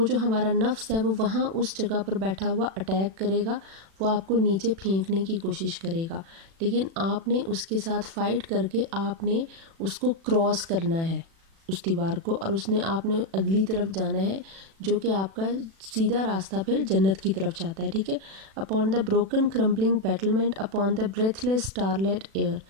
جو ہمارا نفس ہے وہ وہاں اس جگہ پر بیٹھا ہوا اٹیک کرے گا، وہ آپ کو نیچے پھینکنے کی کوشش کرے گا، لیکن آپ نے اس کے ساتھ فائٹ کر کے آپ نے اس کو کراس کرنا ہے، اس دیوار کو، اور اس نے آپ نے اگلی طرف جانا ہے، جو کہ آپ کا سیدھا راستہ پھر جنت کی طرف جاتا ہے، ٹھیک ہے. Upon the broken crumbling battlement upon the breathless starlit air.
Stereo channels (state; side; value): late; left; 36 ms